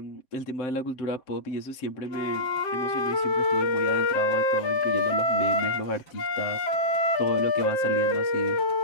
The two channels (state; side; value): late; right; 7.8 ms